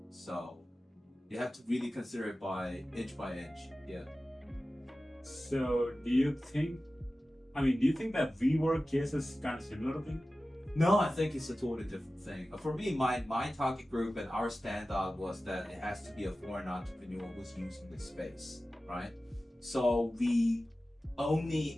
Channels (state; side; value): normal; both; correlation 0.95